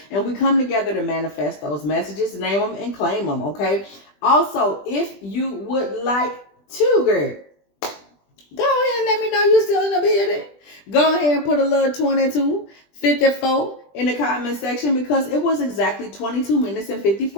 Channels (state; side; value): late; right; 20 ms